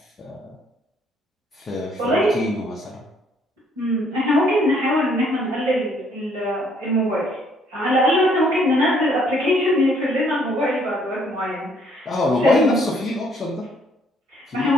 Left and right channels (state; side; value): normal; both; correlation 0.65